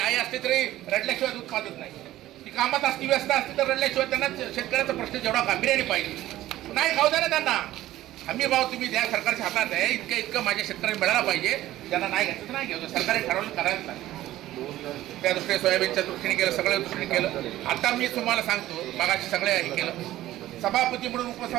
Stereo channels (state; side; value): quieter; left; 14.8 dB